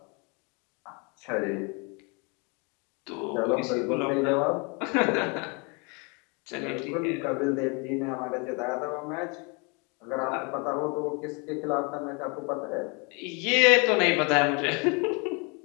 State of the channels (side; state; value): right; quieter; 31.8 dB